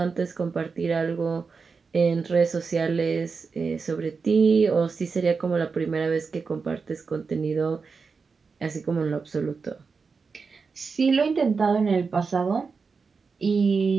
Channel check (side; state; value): left; quieter; 5.0 dB